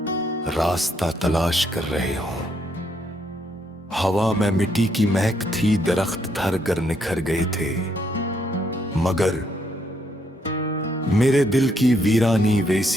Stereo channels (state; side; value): normal; both; correlation 0.74